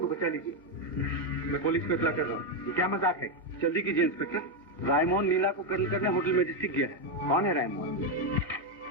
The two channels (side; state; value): both; normal; correlation 0.05